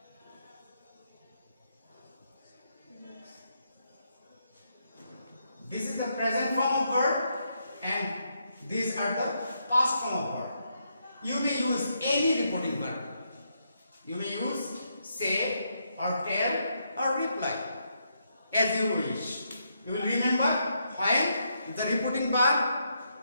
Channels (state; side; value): inverted; both; correlation -0.79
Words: this is the present form of verb and these are the past form of verb. You may use any reporting verb. You may use say or tell or reply as you wish. You will remember when the reporting verb